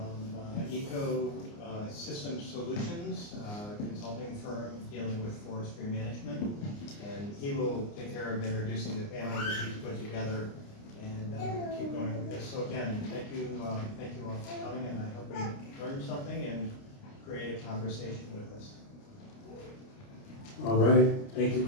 Ecosystem Solutions, consulting firm dealing with forestry management. And he will take care of introducing the panel that he's put together and keep going with this. So again, thank you all for coming, and I hope we learned something and create a conversation with us. All right, thank you,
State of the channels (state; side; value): late; right; 29 ms